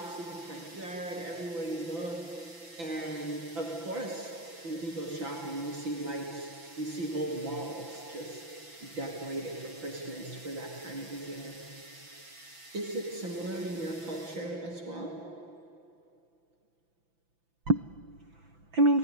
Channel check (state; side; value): late; left; 5.9 ms